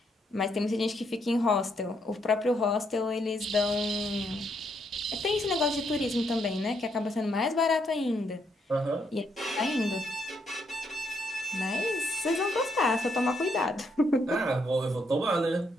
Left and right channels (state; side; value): normal; both; correlation 0.75